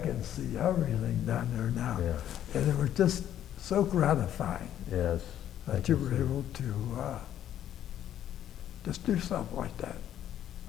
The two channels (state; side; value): quieter; right; 11.0 dB